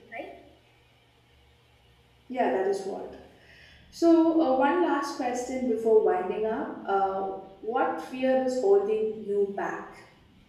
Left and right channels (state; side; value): identical; both; correlation 1.00